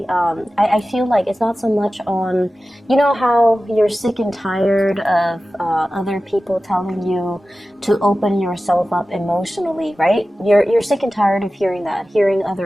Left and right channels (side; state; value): both; normal; correlation 0.95